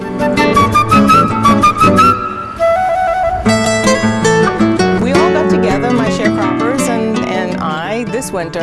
We all got together, my sharecroppers and I, this winter,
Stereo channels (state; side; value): identical; both; correlation 1.00